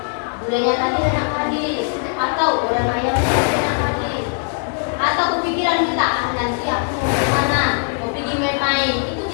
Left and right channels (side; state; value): right; silent; 57 dB below the other